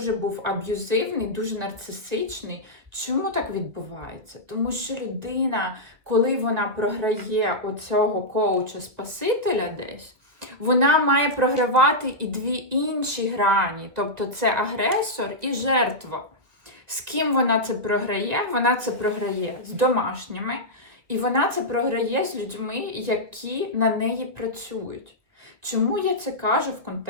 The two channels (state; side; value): late; left; 2.2 ms